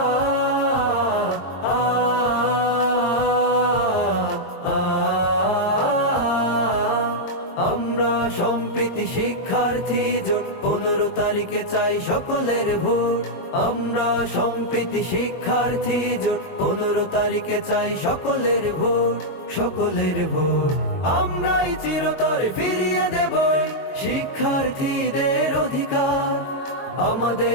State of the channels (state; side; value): late; right; 22 ms